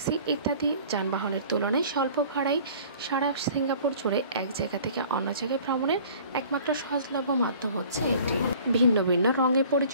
ইত্যাদি যানবাহনের তুলনায় স্বল্প ভাড়ায় সারা সিঙ্গাপুর জুড়ে এক জায়গা থেকে অন্য জায়গায় ভ্রমণের একমাত্র সহজলভ্য মাধ্যম হচ্ছে এটি। ভিন্ন ভিন্ন রঙে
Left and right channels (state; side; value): inverted; both; correlation -0.48